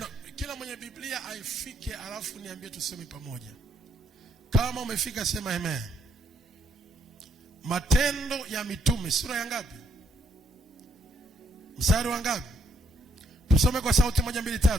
kila mwenye Biblia aifike alafu niambie tusome pamoja. Kama umefika sema amen. Matendo ya Mitume sura ya ngapi? Mstari wa ngapi? Tusome kwa sauti 1 2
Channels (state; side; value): normal; both; correlation 0.72